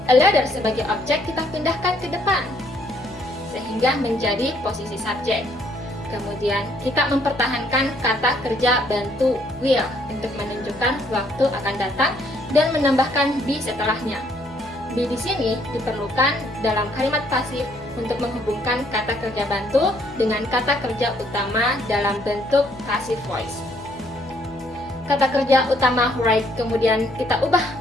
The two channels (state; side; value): noise; left; hum, 22 dB below the sound